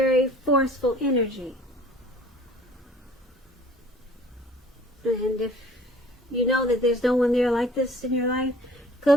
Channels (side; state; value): both; normal; correlation 0.51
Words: forceful energy. And if you know that there's no one there like this in your life,